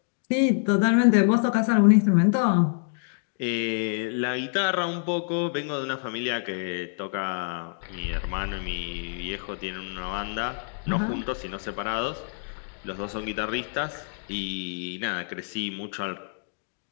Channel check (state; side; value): silent; right; digital silence